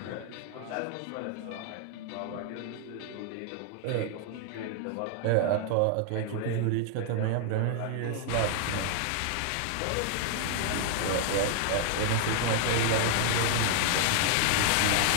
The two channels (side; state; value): both; different; correlation 0.00